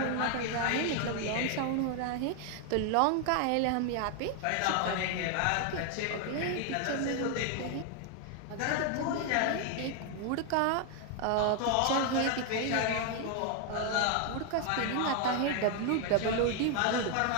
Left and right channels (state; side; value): different; both; correlation 0.00